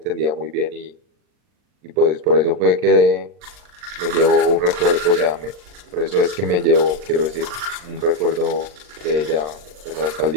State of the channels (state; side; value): late; left; 39 ms